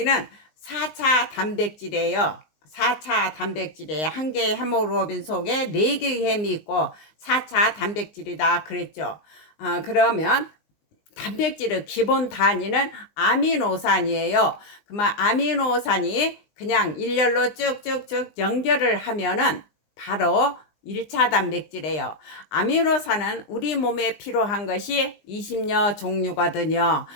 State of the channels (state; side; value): late; right; 19 ms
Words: 4차 단백질이에요. 4차 단백질이에요. 한 개의 헤모글로빈 속에 4개의 햄이 있고 4차 단백질이다 그랬죠. 그러면 단백질의 기본 단위는 아미노산이에요. 그러면 아미노산이 그냥 일렬로 쭉쭉쭉 연결을 하면은 바로 1차 단백질이에요. 아미노산은 우리 몸에 필요한 것이 20여 종류거든요.